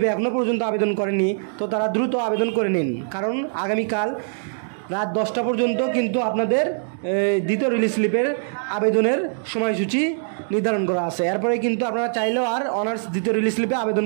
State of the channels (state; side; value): silent; left; digital silence